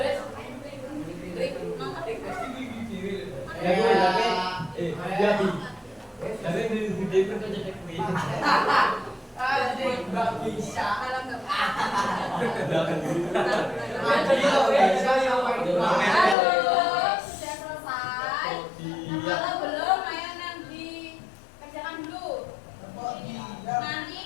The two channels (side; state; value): right; drops out; at 16.4 s